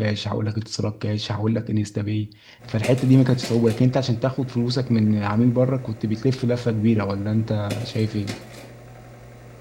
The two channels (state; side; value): identical; both; correlation 1.00